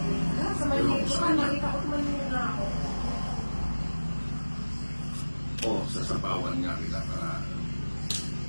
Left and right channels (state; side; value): inverted; both; correlation -1.00